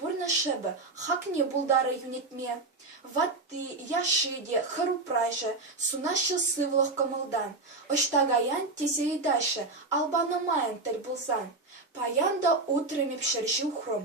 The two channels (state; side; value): quieter; left; 3.4 dB